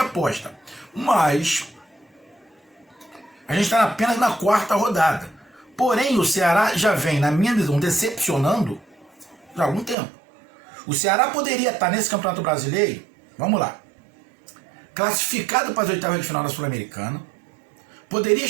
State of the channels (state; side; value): drops out; left; at 10.0 s